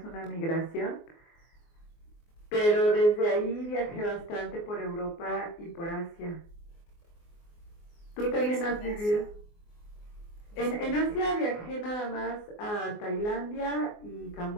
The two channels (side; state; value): right; late; 24 ms